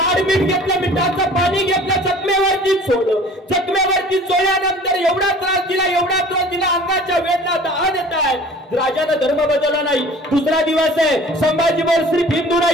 मीठ घेतलं, मिठाचं पाणी घेतलं, जखमेवरती सोडलं. जखमेवरती चोळल्यानंतर एवढा त्रास दिला, अंगाच्या वेदना दहा देत आहे. राजानं धर्म बदलला नाही. दुसरा दिवस आहे. संभाजी बोल सिर्फ हिंदू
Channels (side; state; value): both; normal; correlation 0.46